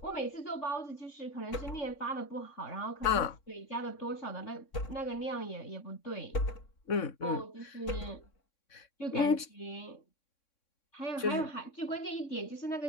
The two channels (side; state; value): right; late; 3.6 ms